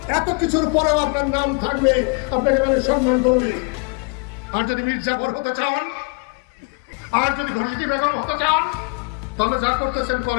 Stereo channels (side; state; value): right; quieter; 33.7 dB